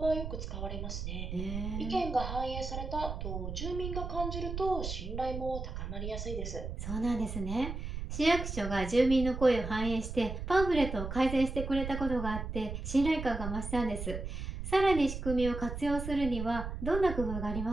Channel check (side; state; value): right; noise; rumble, 6 dB below the sound